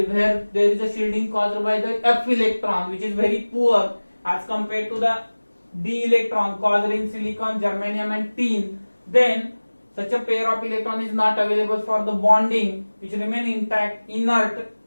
where there is a shielding caused by the F electron, which is very poor as compared to the D electron caused in silicon, germanium, and tin. Then such a pair of electron is not available for the bonding, which remain intact, inert.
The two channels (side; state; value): both; inverted; correlation -1.00